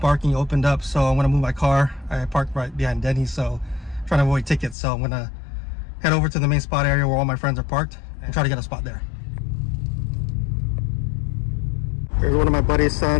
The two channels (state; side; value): drops out; right; at 4.8 s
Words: opened up, so I'm gonna move my car. I parked right behind Denny's, so I'm trying to avoid tickets. So I'm gonna head over to the main spot area where all my friends are parked and try to get a spot there. Here's one of my buddy's